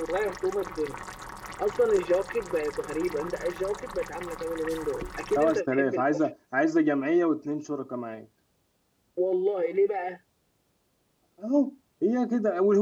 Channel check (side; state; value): both; identical; correlation 1.00